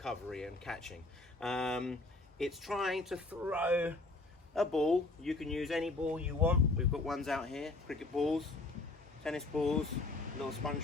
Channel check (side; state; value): right; quieter; 3.2 dB